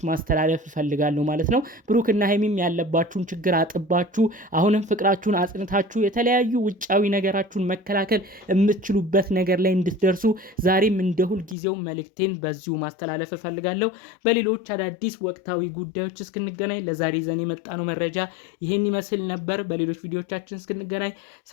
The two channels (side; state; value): right; drops out; at 11.6 s